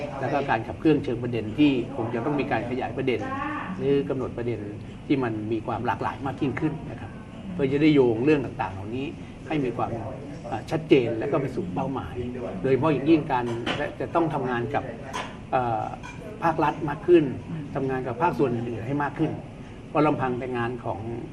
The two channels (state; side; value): identical; both; correlation 1.00